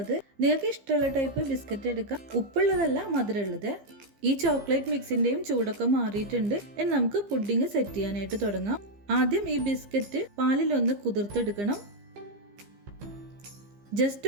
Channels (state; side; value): late; left; 15 ms